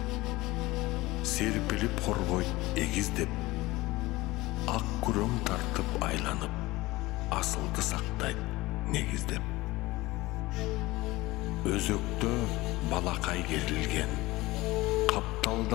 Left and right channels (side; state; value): right; quieter; 19.7 dB